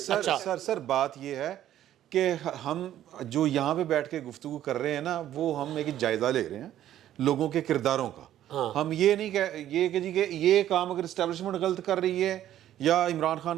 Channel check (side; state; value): left; quieter; 12.1 dB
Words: سر بات یہ ہے کہ ہم جو یہاں پہ بیٹھ کے گفتگو کر رہے ہیں نا, وہ ہم ایک جائزہ لے رہے ہیں لوگوں کے کرداروں کا. ہم یہ نہیں کہ یہ کام اگر اسٹیبلشمنٹ غلط کر رہی ہے یا عمران